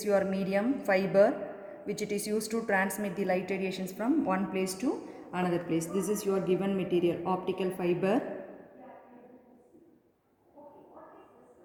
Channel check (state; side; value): identical; both; correlation 1.00